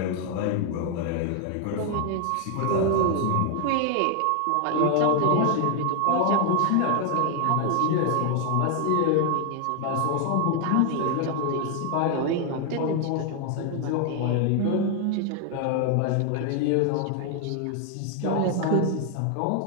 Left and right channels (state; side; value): different; both; correlation 0.00